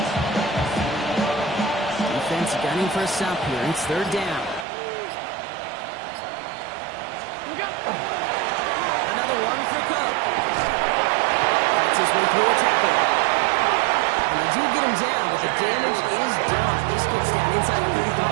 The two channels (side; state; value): left; drops out; at 4.7 s